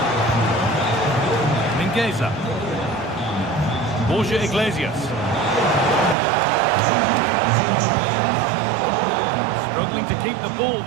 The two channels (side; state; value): left; drops out; at 6.2 s